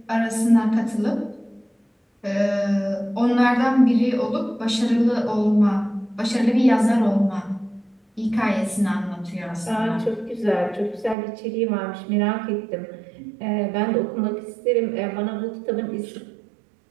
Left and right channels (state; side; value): drops out; left; at 11.2 s